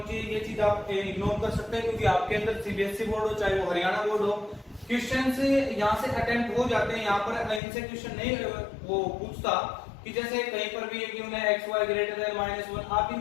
चाहिए, ये चीज आप इग्नोर कर सकते हैं क्योंकि आपके अंदर सीबीएसई बोर्ड हो चाहे वो हरियाणा बोर्ड हो, क्वेश्चन से यहाँ से अटेम्प्ट हो जाते हैं। यहाँ पर इनसे क्वेश्चन नहीं वो पूछता कि जैसे कहीं पर भी कि उन्हें xy ग्रेटर देन -1, आप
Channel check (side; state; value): right; drops out; at 7.6 s